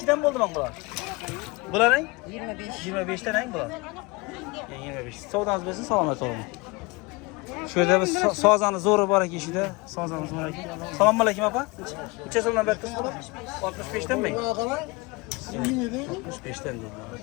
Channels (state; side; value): quieter; right; 25.8 dB